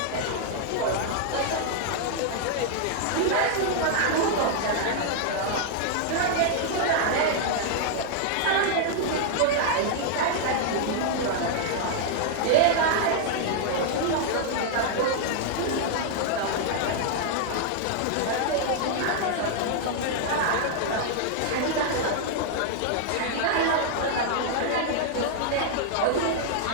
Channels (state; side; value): different; both; correlation -0.01